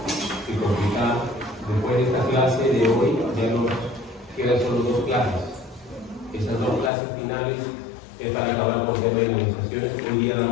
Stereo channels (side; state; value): right; drops out; at 6.9 s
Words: que complicar. Después de esta clase de hoy, ya nos quedan solo 2 clases. Esas 2 clases finales es para acabar con el tema de inmunizaciones. Hoy día